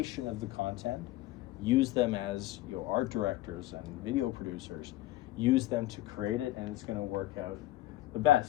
of the content. Use them as art directors and video producers. Use them to create it, and it's going to work out the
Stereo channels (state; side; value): quieter; right; 15.9 dB